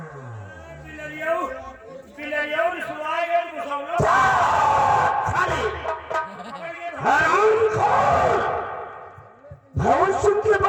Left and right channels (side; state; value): both; identical; correlation 1.00